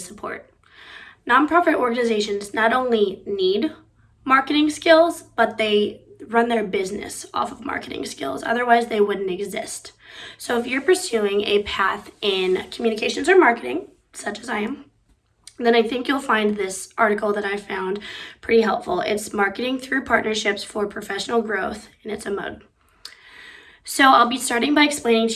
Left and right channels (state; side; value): identical; both; correlation 1.00